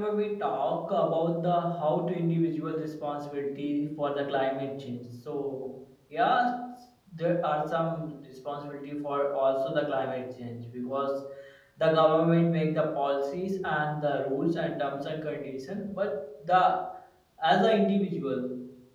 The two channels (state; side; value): identical; both; correlation 1.00